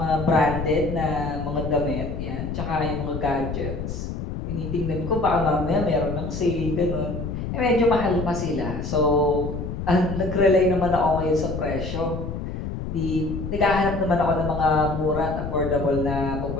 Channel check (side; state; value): left; noise; rumble, 5 dB below the sound